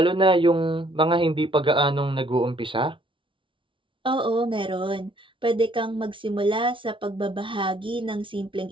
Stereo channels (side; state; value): left; late; 0.25 ms